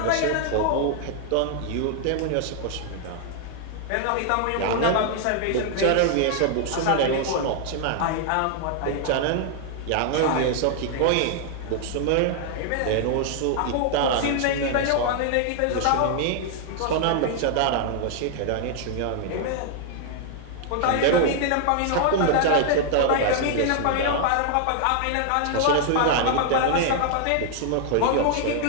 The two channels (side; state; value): both; different; correlation 0.00